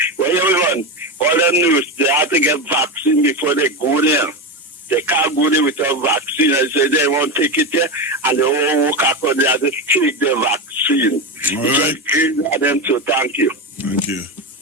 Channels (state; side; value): normal; both; correlation 0.16